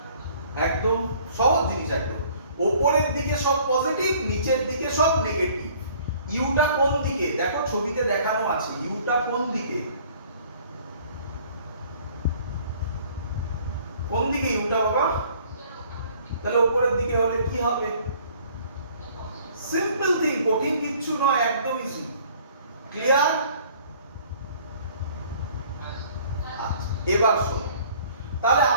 একদম সহজ জিনিস। একদম উপরের দিকে সব পজিটিভ, নিচের দিকে সব নেগেটিভ। ইউটা কোন দিকে? দেখো ছবিতে দেখানো আছে। ইউটা কোন দিকে? কোন দিকে ইউটা বাবা? তাহলে উপরের দিকে হলে কি হবে? সিম্পল থিং, কঠিন কিচ্ছু নয়, একদম ইজি। ক্লিয়ার? এবার শোনো, তাহলে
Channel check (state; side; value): inverted; both; correlation -0.55